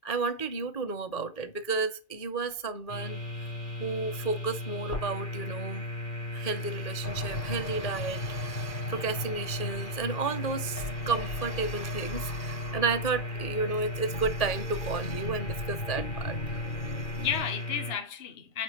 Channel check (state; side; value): late; right; 2.4 ms